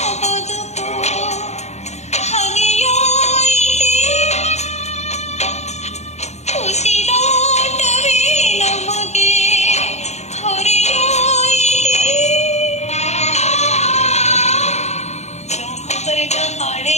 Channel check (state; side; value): late; right; 0.32 ms